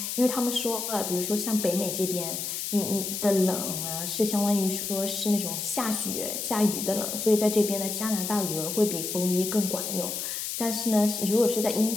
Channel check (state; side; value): noise; left; hiss, 4 dB below the sound